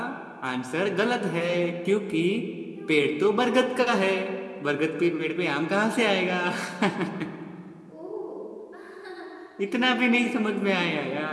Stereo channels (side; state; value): both; identical; correlation 1.00